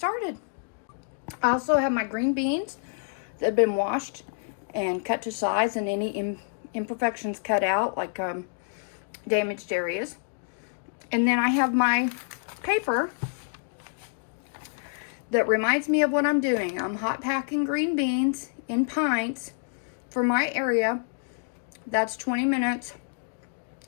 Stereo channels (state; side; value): silent; right; digital silence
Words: I also have my green beans that have been washed and cut to size, and any imperfections cut out, like damaged areas. And then I have my paper that reminds me of what I'm doing. I'm hot packing green beans in pints for my area. That's 20 minutes.